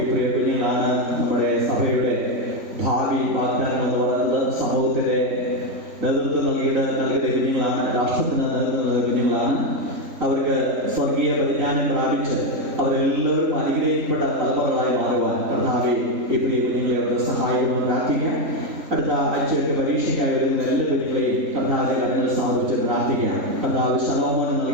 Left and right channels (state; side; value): late; left; 3.5 ms